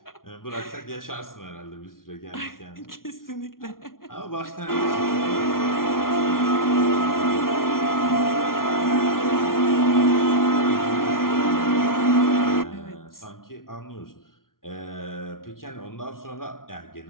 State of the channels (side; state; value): right; late; 0.91 ms